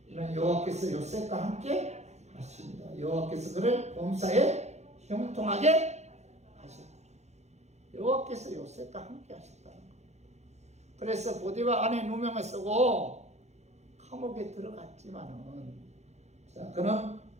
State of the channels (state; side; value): late; left; 0.32 ms